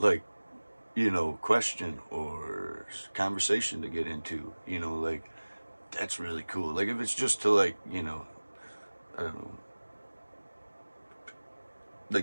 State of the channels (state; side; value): inverted; both; correlation -1.00